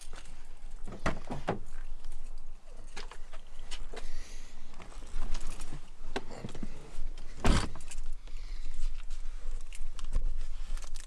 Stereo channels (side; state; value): both; identical; correlation 1.00